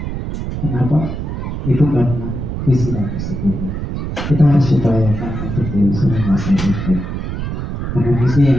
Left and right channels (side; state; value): right; noise; rumble, 4 dB below the sound